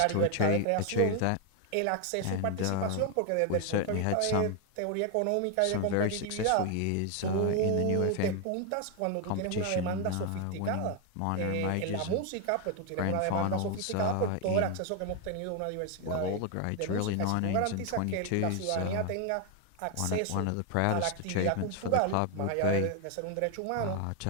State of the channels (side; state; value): both; different; correlation 0.01